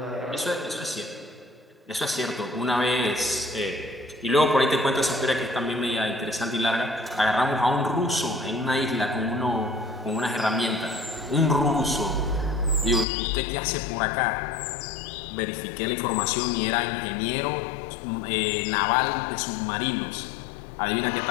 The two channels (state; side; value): drops out; right; at 13.1 s